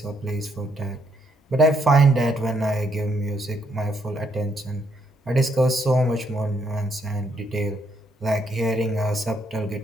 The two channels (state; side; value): normal; both; correlation 0.73